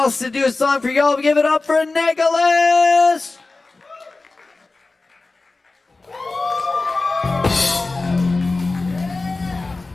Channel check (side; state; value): right; quieter; 3.5 dB